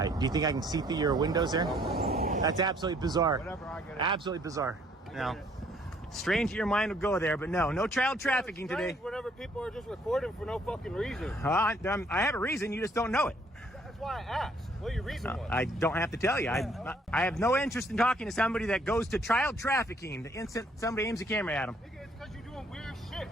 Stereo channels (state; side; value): normal; both; correlation 0.64